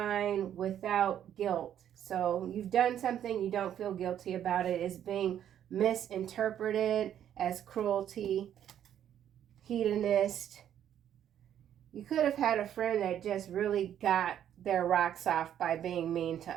without guilt. So you've done something, you don't feel guilty about it. It's being misinterpreted as cruelty, hedonist. You could have had a friend that just really got their rocks off by being mean to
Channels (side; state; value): left; quieter; 10.2 dB